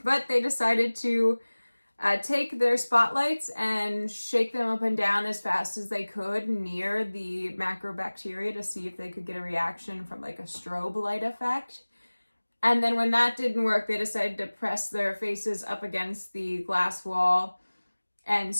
decided to take their spotlights and shake them up and down as fast as they could near the macrobacteria to see if they could get a reaction from like a strobe light effect. And then when that didn't work, they decided to press their faces up against the glass wall and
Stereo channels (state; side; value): inverted; both; correlation -1.00